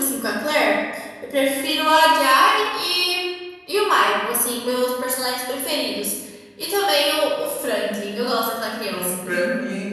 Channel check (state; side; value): identical; both; correlation 1.00